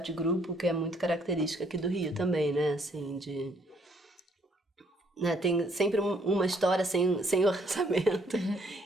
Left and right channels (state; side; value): normal; both; correlation 0.66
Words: de grupo, que é muito característica aqui do Rio também, né? Assim, né, tem sempre uma história sem orçamento